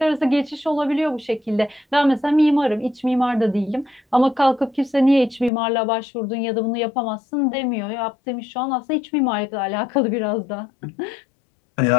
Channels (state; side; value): drops out; right; at 5.5 s